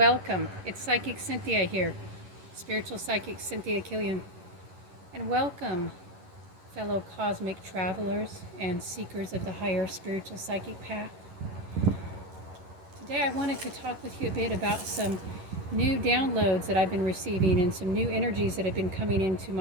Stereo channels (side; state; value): left; late; 11 ms